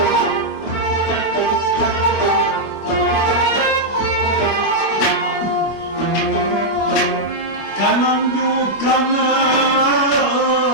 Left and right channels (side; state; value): right; late; 25 ms